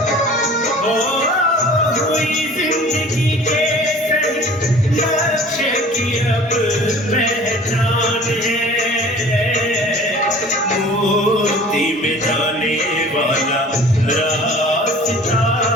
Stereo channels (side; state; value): both; normal; correlation 0.46